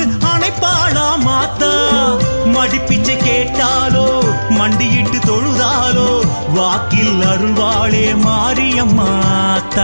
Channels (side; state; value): both; inverted; correlation -1.00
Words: அணைப்பாளா மாத்தா மடிப்பிச்சை கேட்டாலோ மண்டியிட்டு தொழுதாலோ வாக்கில் அருள்வாளே